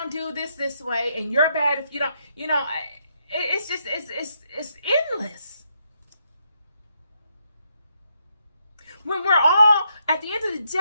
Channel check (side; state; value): both; inverted; correlation -0.78